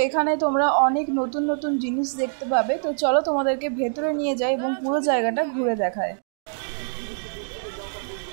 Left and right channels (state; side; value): silent; left; digital silence